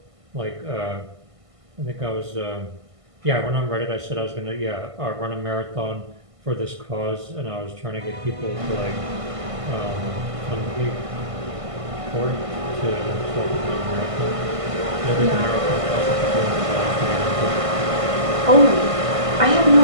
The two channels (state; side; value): late; left; 1.5 ms